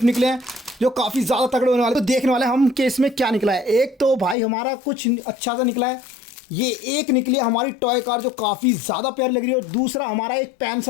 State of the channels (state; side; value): drops out; right; at 4.4 s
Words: निकले हैं जो काफी ज्यादा तगड़े होने वाले। तो देखने वाले हम कि इसमें क्या निकला है। एक तो भाई हमारा कुछ अच्छा सा निकला है, ये एक निकली है हमारी टॉय कार जो काफी ज्यादा प्यारी लग रही है। और दूसरा हमारा एक पेन